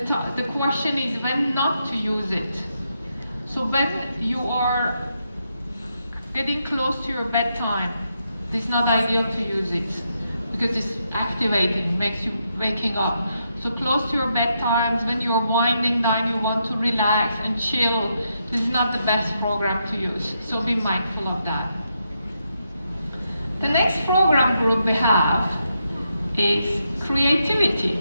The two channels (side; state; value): both; inverted; correlation -0.81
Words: question is when not to use it. So when you are getting close to your bedtime, it's not ideal to use it because it's activating, makes you waking up. So close to your bedtimes, when you're winding down, you want to relax and chill, this is not the best program to use. So be mindful of that. The next program group we have is